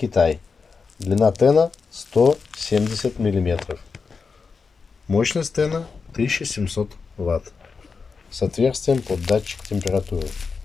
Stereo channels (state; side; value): quieter; right; 5.0 dB